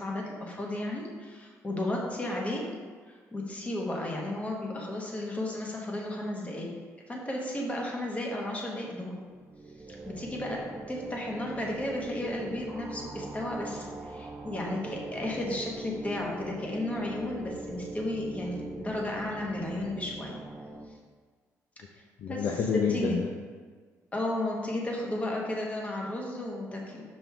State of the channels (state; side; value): normal; both; correlation 0.73